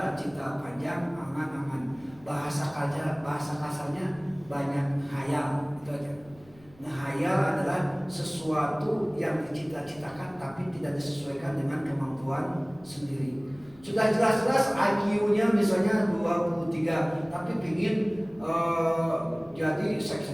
cita panjang, angan-angan. Bahasa kasarnya banyak hayal, itu aja. Ngehayal adalah sesuatu yang dicita-citakan tapi tidak disesuaikan dengan kemampuan sendiri. Sudah jelas-jelas IQ-nya misalnya 23, tapi pingin jadi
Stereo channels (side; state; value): left; noise; rumble, 25 dB below the sound